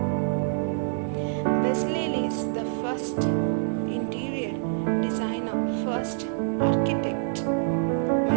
Bezalel is the first interior designer, first architect.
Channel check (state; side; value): silent; left; 58 dB below the other